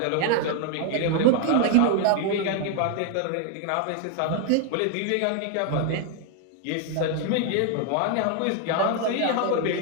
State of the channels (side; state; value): both; different; correlation 0.00